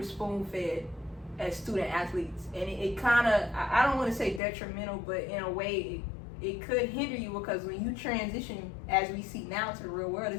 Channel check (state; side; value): drops out; right; at 4.4 s